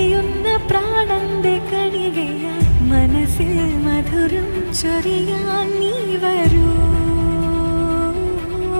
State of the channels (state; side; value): inverted; both; correlation -1.00